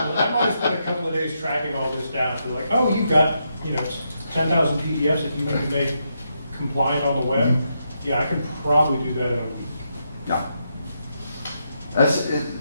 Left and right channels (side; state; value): both; inverted; correlation -0.82